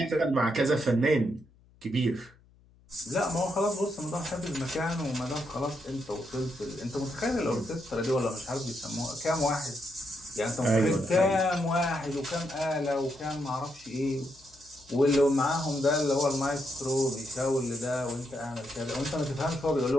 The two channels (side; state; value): left; noise; hum, 29 dB below the sound